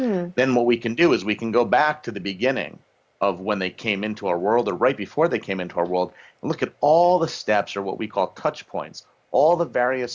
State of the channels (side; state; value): both; identical; correlation 1.00